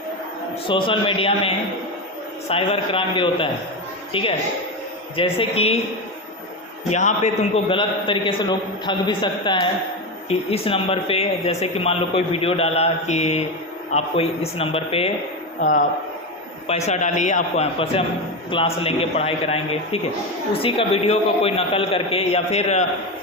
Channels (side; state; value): both; normal; correlation 0.15